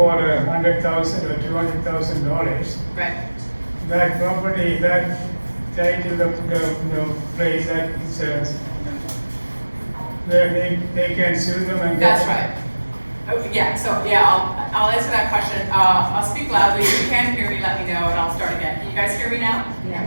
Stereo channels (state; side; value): inverted; both; correlation -1.00